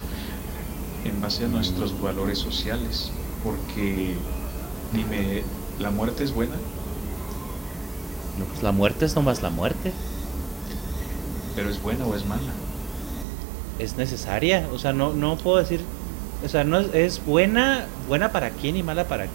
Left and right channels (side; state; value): left; drops out; at 13.2 s